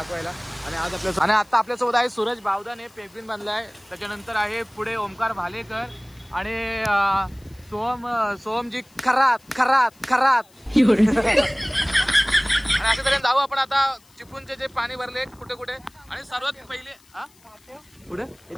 आणि आज आता आपल्यासोबत आहे सूरज बावदाने पेंग्विन बांधलाय. त्याच्यानंतर आहे पुढे ओमकार भालेकर आणि सोहमजी खरात. आणि अशा तऱ्हेने जाऊ आपण आता चिपळूणचे जे पाणी भरले कुठे कुठे. आणि सर्वात पहिले पुढे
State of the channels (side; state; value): left; noise; hiss, 30 dB below the sound